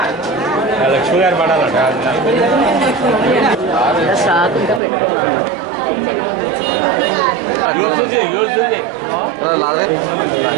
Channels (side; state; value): left; drops out; at 4.8 s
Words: లక్ష్మి గారు పడాలట